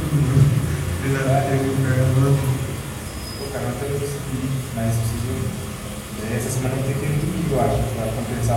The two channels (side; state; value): both; identical; correlation 1.00